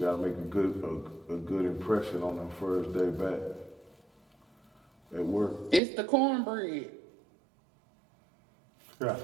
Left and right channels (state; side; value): drops out; left; at 5.8 s